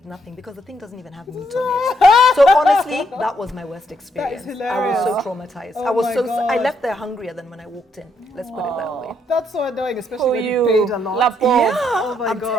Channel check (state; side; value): normal; both; correlation 0.74